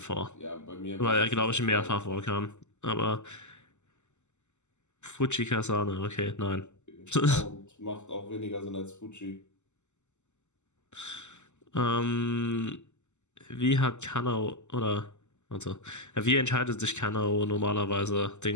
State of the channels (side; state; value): right; late; 0.83 ms